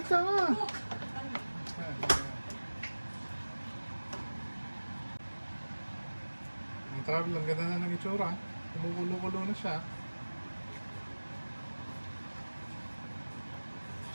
nga! Ang travel, ang ganda na ng itsura. Kumukulo-kulo na siya.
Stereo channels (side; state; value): both; inverted; correlation -1.00